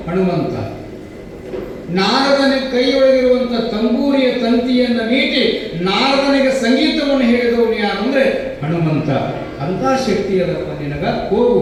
ಹನುಮಂತ. ನಾರದನಿಗೆ ಕೈಯೊಳಗಿರುವಂತ ತಂಬೂರಿಯ ತಂತಿಯನ್ನು ಮೀಟಿ ನಾರದನಿಗೆ ಸಂಗೀತವನ್ನು ಹೇಳಿದವನು ಯಾರು ಅಂದ್ರೆ ಹನುಮಂತ. ಅಂತ ಶಕ್ತಿ ಅದಪ್ಪ ನಿನಗ. ಹೋಗು,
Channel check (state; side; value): identical; both; correlation 1.00